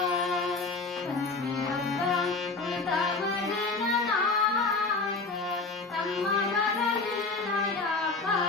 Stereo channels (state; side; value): quieter; right; 3.8 dB